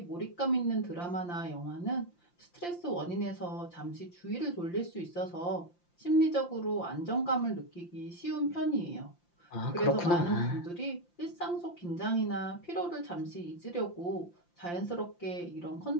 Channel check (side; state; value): right; late; 5.8 ms